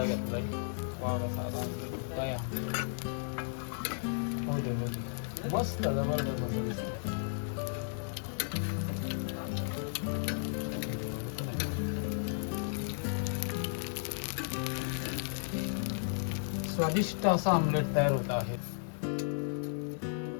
घेतलाय. वा साधा ऑमलेट काय हो दे मस्त जबरदस्त मस्त दिसतं. स्वादिष्ट असा ऑमलेट तयार होत आहे.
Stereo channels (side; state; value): right; silent; digital silence